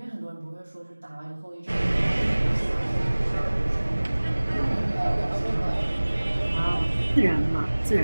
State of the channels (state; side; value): inverted; both; correlation -1.00